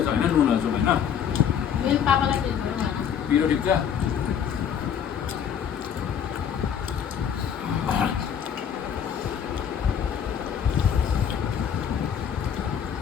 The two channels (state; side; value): quieter; right; 8.2 dB